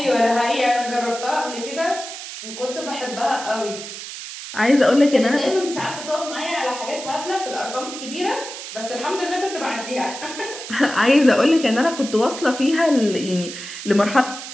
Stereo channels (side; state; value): right; noise; hiss, 10 dB below the sound